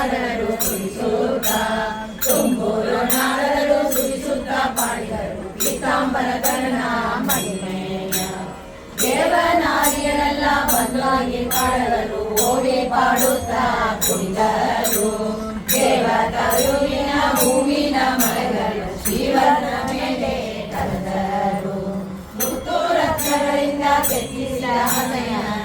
ನಾಡರು ಸುರಿಸುತ್ತ ಪಾಡಿದರು ಪೀತಾಂಬರ ಕರ್ಣ ಮಹಿಮೆಯ ದೇವನಾರಿಯರೆಲ್ಲ ಬಂದಾಗಿ ಪಾಡಲು ಓಡಿ ಪಾಡುತ್ತಾ ಕುಡಿದರು ದೇವತಾಯುವಿನ ಹೂವಿನ ಮರಗಳು ಶಿವನ ಮೇಲೆ ಕರೆದರು ಮುತ್ತು ರತ್ನಗಳಿಂದ ಕೆತ್ತಿಸಿದ ಹಸೆಯ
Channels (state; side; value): identical; both; correlation 1.00